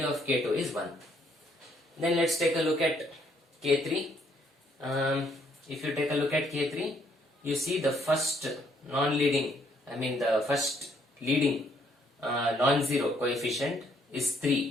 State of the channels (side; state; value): both; normal; correlation 0.68